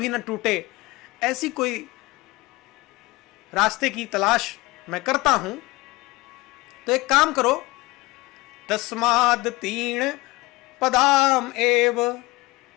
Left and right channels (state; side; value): quieter; right; 21.9 dB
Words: न टूटे, ऐसी कोई रास्ते की तलाश मैं करता हूं। तो एक काम करो, तस्माद तीन पदाम एव,